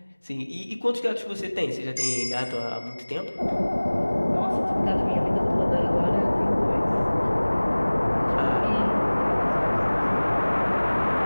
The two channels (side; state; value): both; inverted; correlation -1.00